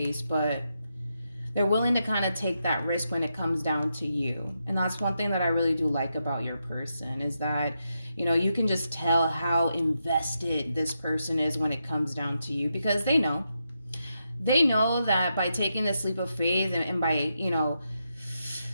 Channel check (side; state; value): both; inverted; correlation -0.84